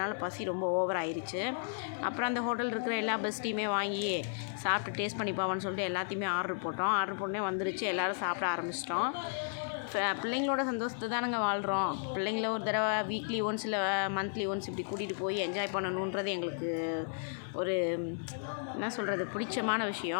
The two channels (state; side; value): silent; right; digital silence